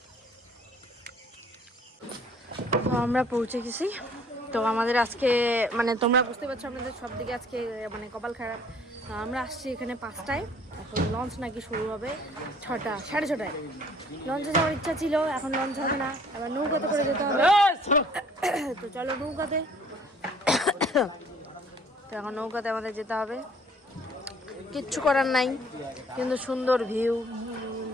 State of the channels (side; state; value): both; normal; correlation 0.56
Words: তো আমরা পৌঁছে গেছি তো আমাদের আজকে মানে তোমরা বুঝতে পারছো আমাদের সব দিকে আজকে মানে কপাল খারাপ। আমরা আসছি এখানে 5টায়, এখন লঞ্চ নাকি শুরু হবে 6টা 6:30টায়। লঞ্চে যাওয়ার ইচ্ছা ছিল, এখন লঞ্চ হবে না, আবার নৌকাতে করে যেতে হবে। তো চলো নৌকাতে, তো এখন নৌকাতে আমাদের যেতে হবে, কিচ্ছু করার নাই, কিন্তু সুন্দর ভিউ।